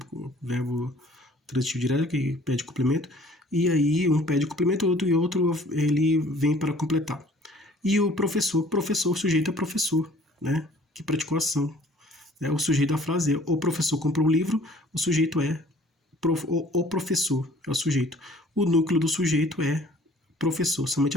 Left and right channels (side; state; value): both; normal; correlation 0.54